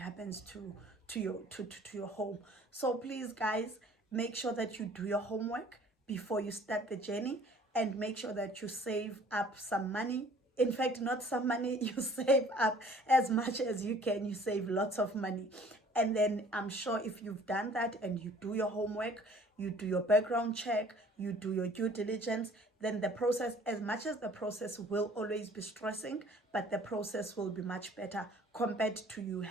to your home. So please guys, make sure that you do your homework before you start the journey, and make sure that you save up some money. In fact, not some money, you save up as much as you can. You save lots of money. And then I'm sure if you've done that and you do your homework, you do your background check, you do your due diligence, then the process, as much as the process will always be stressing, but the process will be much better compared to you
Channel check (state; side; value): normal; both; correlation 0.53